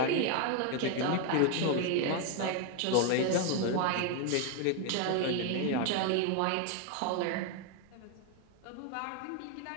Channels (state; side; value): different; both; correlation 0.01